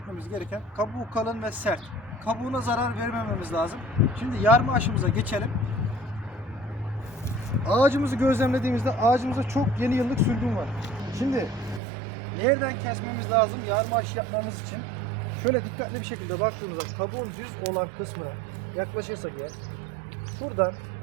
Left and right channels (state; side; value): drops out; left; at 11.8 s